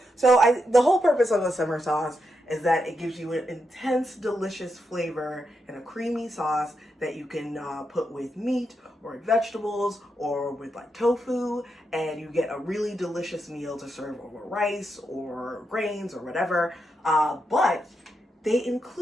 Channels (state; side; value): normal; both; correlation 0.84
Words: So the whole purpose of a simmer sauce is that it gives you an intense, delicious flavor and a creamy sauce that you can put with meat or vegetables or with like tofu, and you get a really delicious meal to serve over rice or grains or whatever. But they